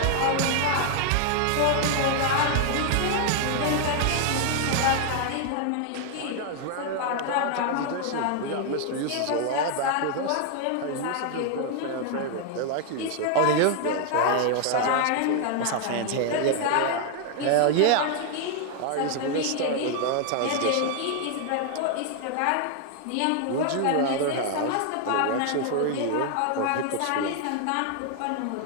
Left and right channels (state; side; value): different; both; correlation 0.00